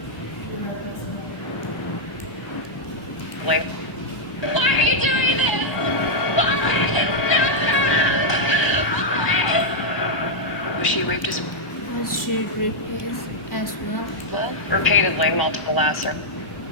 Like, Why are you doing this? Wallace, no! Wallace! was she raped as Was she replaced as well? well? Repeatedly, multiple lacerations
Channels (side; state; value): right; late; 1.0 ms